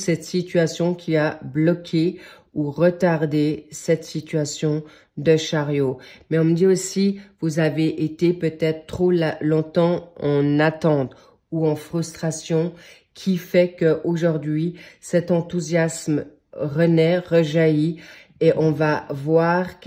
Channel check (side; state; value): both; identical; correlation 1.00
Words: situation qui a bloqué ou retardé cette situation de chariot. Mais on me dit aussi, vous avez été peut-être trop longtemps en attente ou en frustration, qui fait qu'aujourd'hui, cet enthousiasme renaît, rejaillit, et on va voir